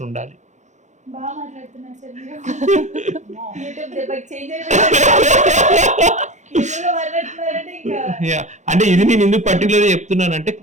ఉండాలి. బాగా మాట్లాడుతున్నారు సార్ మీరు. అంటే ఇది నేను ఎందుకు పర్టికులర్గా చెప్తున్నానంటే,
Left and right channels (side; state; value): left; late; 0.34 ms